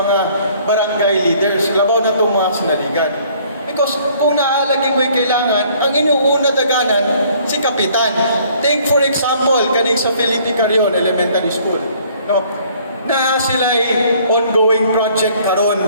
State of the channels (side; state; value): both; inverted; correlation -0.59